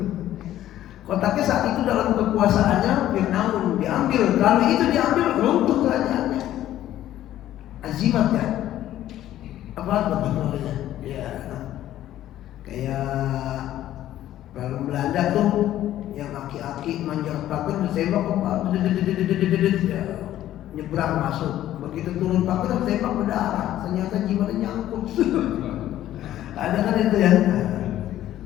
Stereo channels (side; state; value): right; quieter; 13.0 dB